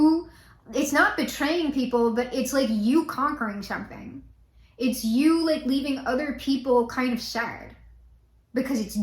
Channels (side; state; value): both; identical; correlation 1.00